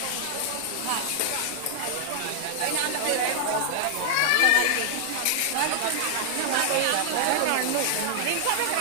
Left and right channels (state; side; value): different; both; correlation -0.01